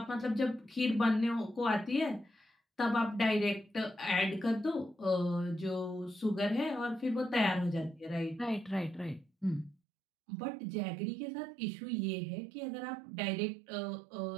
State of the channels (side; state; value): left; drops out; at 9.8 s